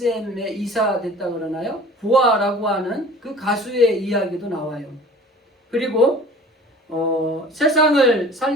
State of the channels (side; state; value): both; normal; correlation 0.45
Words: 이사 됐다 그러나요? 보아라고 하는 그 가수의 이야기도 나와요. 그리고 세상을